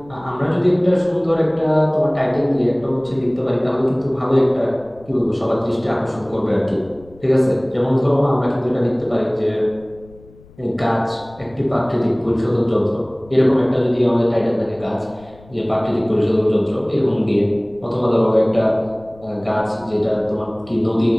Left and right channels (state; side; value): noise; left; rumble, 24 dB below the sound